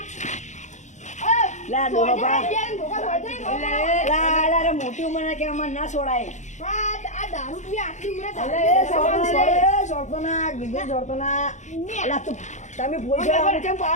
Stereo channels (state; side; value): late; right; 0.35 ms